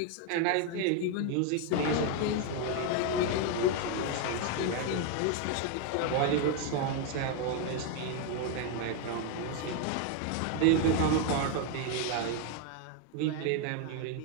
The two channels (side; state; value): both; different; correlation 0.01